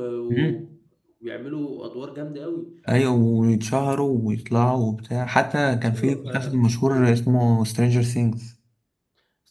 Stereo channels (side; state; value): both; identical; correlation 1.00